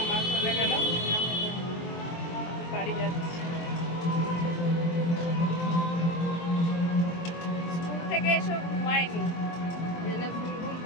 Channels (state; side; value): late; right; 23 ms